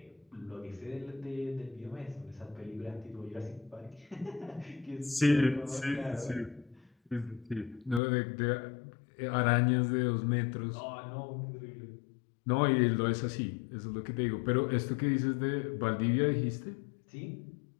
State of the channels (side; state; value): right; drops out; at 8.0 s